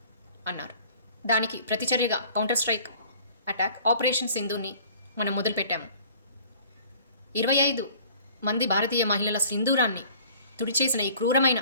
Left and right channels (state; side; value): inverted; both; correlation -0.50